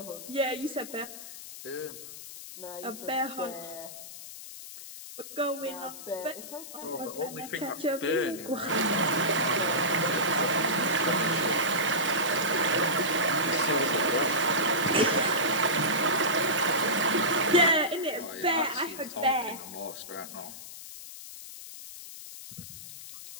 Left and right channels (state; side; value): noise; left; hiss, 13 dB below the sound